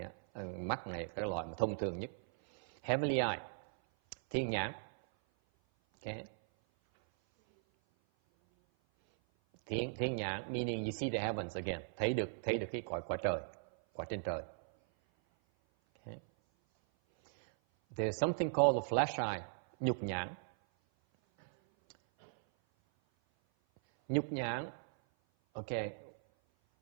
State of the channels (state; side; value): silent; left; 52 dB below the other